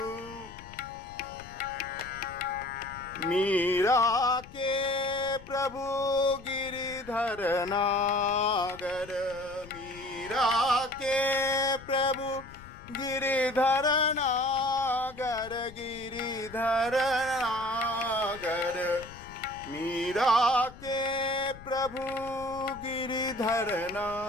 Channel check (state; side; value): noise; left; rumble, 18 dB below the sound